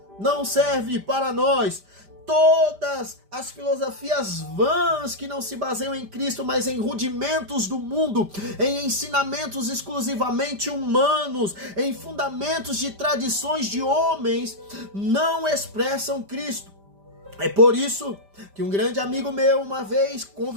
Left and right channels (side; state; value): left; late; 5.0 ms